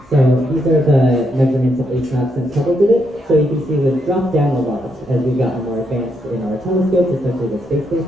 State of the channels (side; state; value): both; normal; correlation 0.78